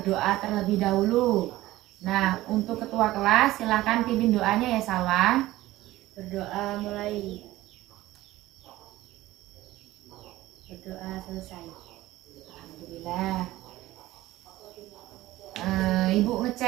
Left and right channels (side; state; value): left; quieter; 16.6 dB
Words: terlebih dahulu. Nah, untuk ketua kelas silakan pimpin doanya ya Salwa. Berdoa mulai. Berdoa selesai. Alhamdulillah. Ibu